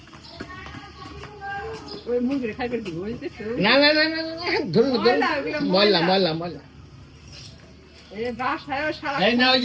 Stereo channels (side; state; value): both; identical; correlation 1.00